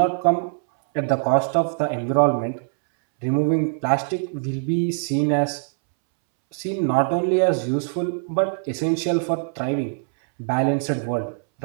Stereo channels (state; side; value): silent; left; 64 dB below the other